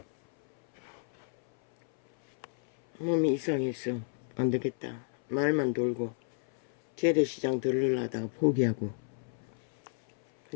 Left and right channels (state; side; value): silent; right; 57 dB below the other